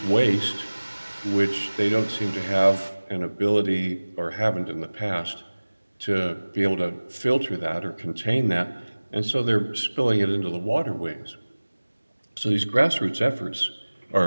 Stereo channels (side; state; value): both; inverted; correlation -1.00